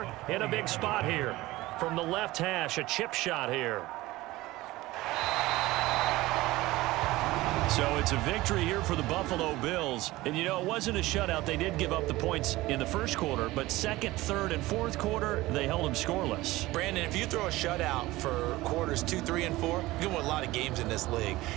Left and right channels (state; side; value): quieter; left; 18.6 dB